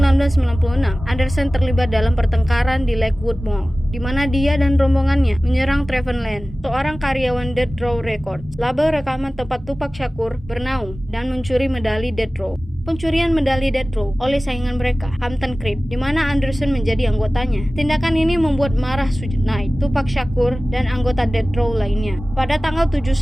Anderson terlibat dalam pertengkaran di Lakewood Mall, di mana dia dan rombongannya menyerang Trevon Lane, seorang karyawan Death Row Records, label rekaman tempat Tupac Shakur bernaung dan mencuri medali Death Row. Pencurian medali Death Row oleh saingan mereka, Compton Crips, di mana Anderson menjadi anggotanya. Tindakan ini membuat marah Suge Knight, Tupac Shakur, dan anggota Death Row lainnya. Pada tanggal 7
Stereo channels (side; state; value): both; normal; correlation 0.97